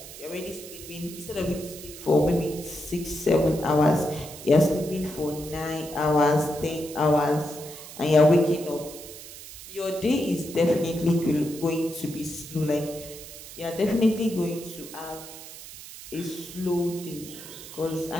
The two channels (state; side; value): noise; right; hiss, 14 dB below the sound